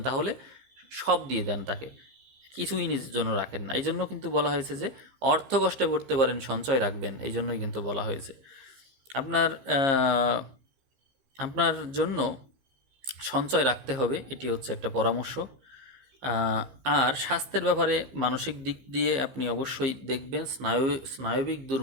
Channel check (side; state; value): left; late; 15 ms